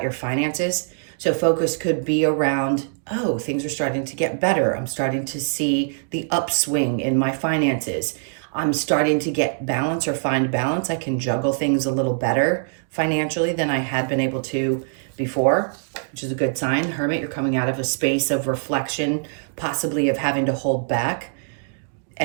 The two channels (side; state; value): left; silent; digital silence